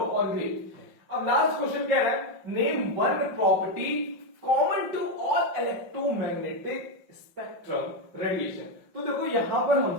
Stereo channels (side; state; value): left; late; 5.6 ms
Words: और ग्रीन। अब लास्ट क्वेश्चन क्या है, name one property common to all electromagnetic spectrum radiation. तो देखो यहां पर